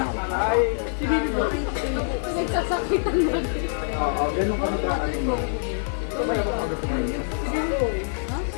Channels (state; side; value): silent; right; 62 dB below the other